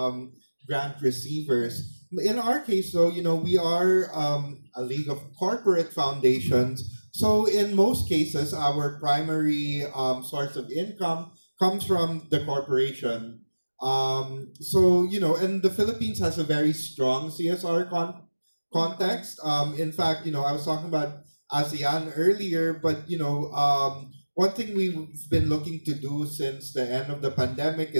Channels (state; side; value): inverted; both; correlation -1.00